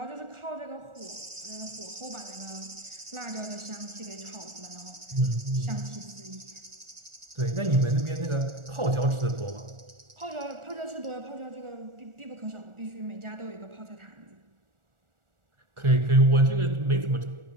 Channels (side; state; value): left; late; 1.4 ms